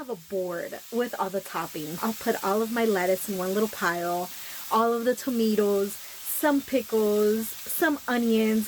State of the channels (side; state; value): both; identical; correlation 1.00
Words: a board with all the toppings. I'll put all of my lettuce in one little pile, all of the tomatoes, some pickles, some